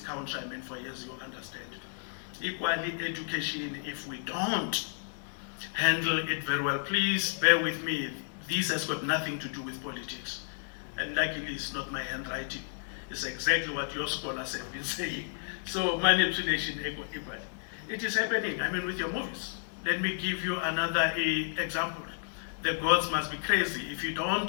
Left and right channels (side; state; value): right; silent; digital silence